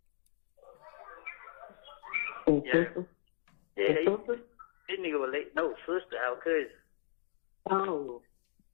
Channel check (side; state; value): right; silent; digital silence